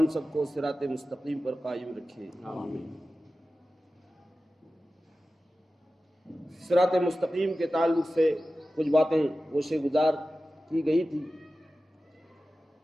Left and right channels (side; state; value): both; normal; correlation 0.95